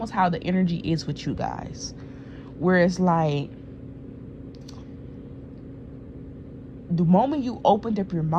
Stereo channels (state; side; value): identical; both; correlation 1.00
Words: how the energy is with you guys. Where it's the moment you opened up your